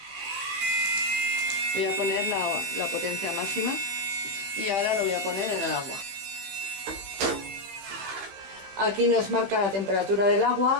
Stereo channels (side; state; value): left; late; 15 ms